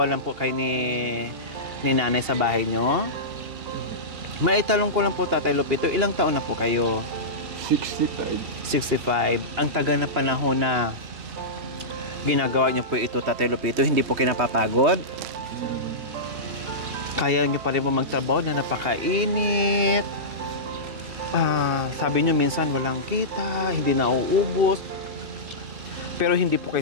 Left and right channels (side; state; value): left; late; 2.8 ms